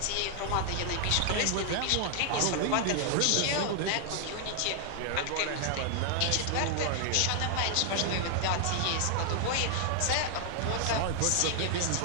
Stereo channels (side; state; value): both; different; correlation 0.00